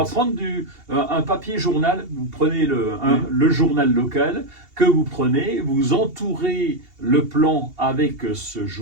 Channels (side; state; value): left; late; 2.8 ms